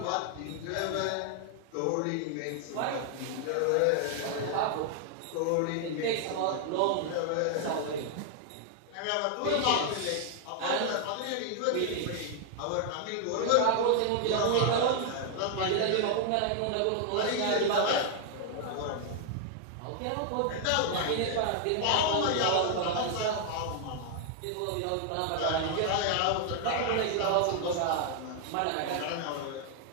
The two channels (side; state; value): both; different; correlation 0.00